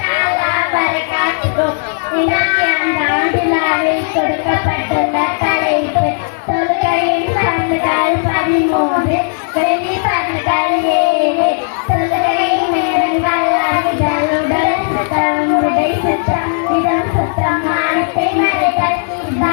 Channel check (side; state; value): right; silent; digital silence